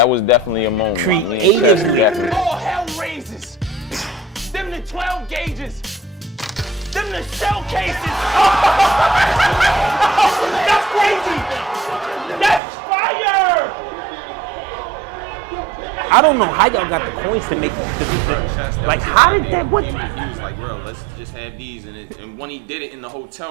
was definitely a moment. Me and Chess Creatively. definitely. All hell raises. Them the 12 gauges. Them the shell cases. That's crazy. That's fire. I don't know how y'all got the points to make that. Bro, Chess, that was his how did idea. that- He was like, bro, let's just have these. And when he did it in the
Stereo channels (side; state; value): left; drops out; at 12.6 s